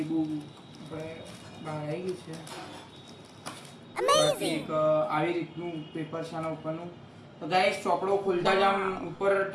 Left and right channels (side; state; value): both; identical; correlation 1.00